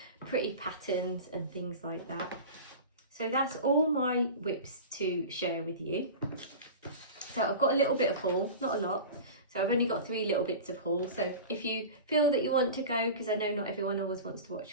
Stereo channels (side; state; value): both; inverted; correlation -0.32